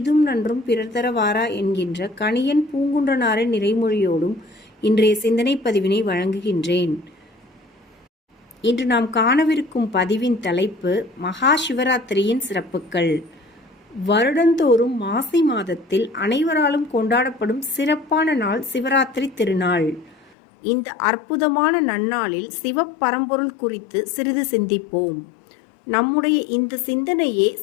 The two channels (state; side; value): drops out; right; at 20.4 s